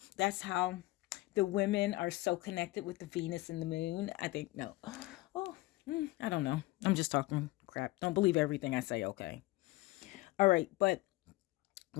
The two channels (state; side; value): quieter; right; 19.7 dB